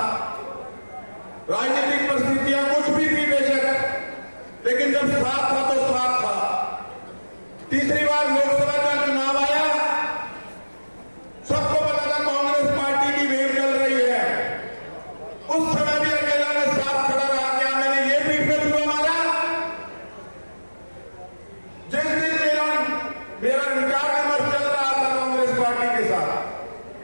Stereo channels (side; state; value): both; inverted; correlation -1.00